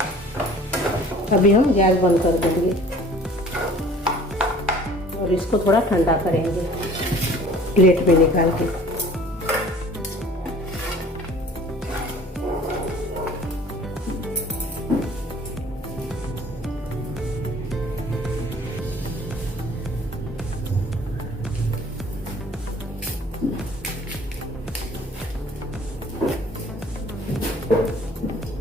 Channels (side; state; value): both; normal; correlation 0.50